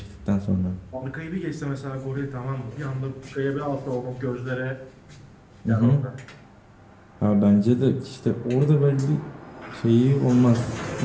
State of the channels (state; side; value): identical; both; correlation 1.00